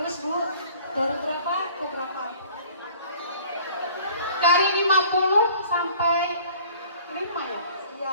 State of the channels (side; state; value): both; inverted; correlation -0.50